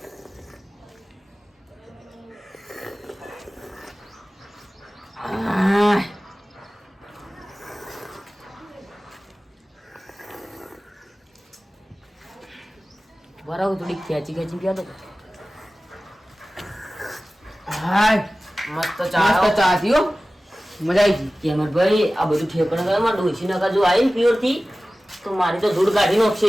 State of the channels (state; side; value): normal; both; correlation 0.97